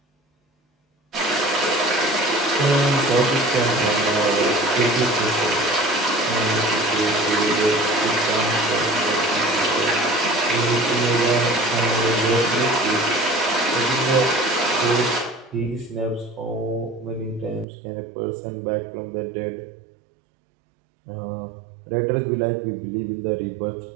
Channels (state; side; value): drops out; left; at 17.7 s